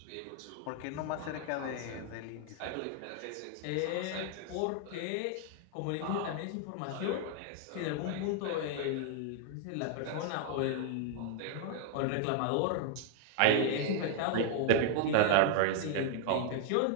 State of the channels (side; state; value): both; different; correlation 0.00